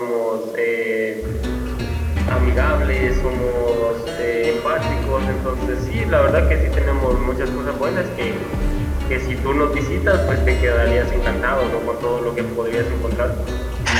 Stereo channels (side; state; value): both; identical; correlation 1.00